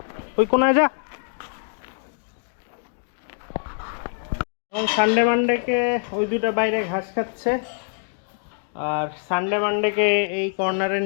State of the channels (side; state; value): right; silent; 62 dB below the other